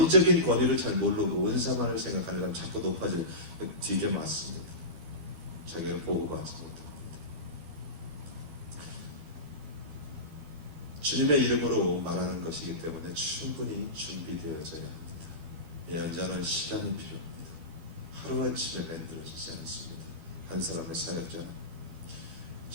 권위를 잘 모르고 은사만을 생각하는 사람 자꾸 높아질 되게 맞습니다. 자기가 보호받지 못합니다. 주님의 이름으로 말하는 것이기 때문에 충분히 준비되어져야 합니다. 예언자는 시간이 필요합니다. 하루아침에 만들어지지 않습니다. 한 사람의 사역자는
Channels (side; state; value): left; late; 12 ms